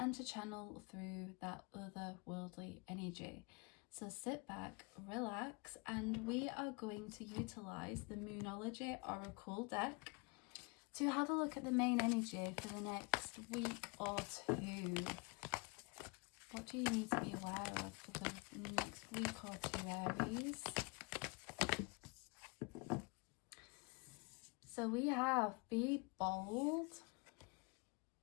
to channel through that otherworldly energy. So sit back, relax, and we are going to utilize the Moonology Oracle deck to have a look at the main energy for the next week or two. What do you need to be aware of for the next week or two, Aries? So we have be bold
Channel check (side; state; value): right; quieter; 29.6 dB